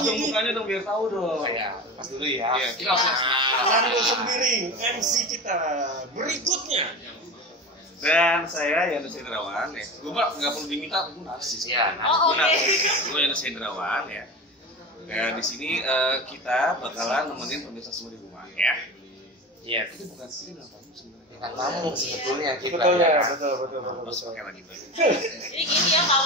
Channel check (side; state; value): both; normal; correlation 0.29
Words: dong mukanya dong biar tahu dong. Ya, pas dulu ya. Iya, kita langsung. Fernando sendiri, MC kita berikutnya. Dan saya Yanes Hendrawan ya. Gue nggak perlu diminta, aku narsis. Iya, Gue Yanes Hendrawan ya. Ya di sini kita bakalan nemenin pemirsa semua di rumah ya. Iya, Itu bukan sih bilang tamu sebenarnya. kita tamu sebetulnya kita. Betul ya, kan? betul. Terus pakai lagi bang. Jadi gini ya,